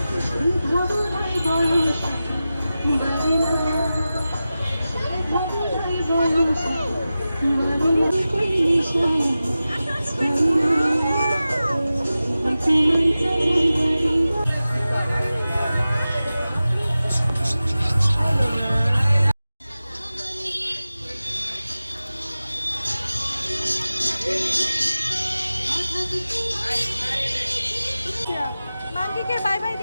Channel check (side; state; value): both; inverted; correlation -0.95